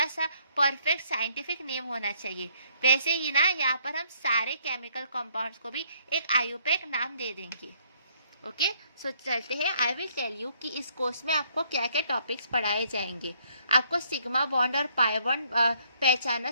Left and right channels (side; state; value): both; inverted; correlation -0.67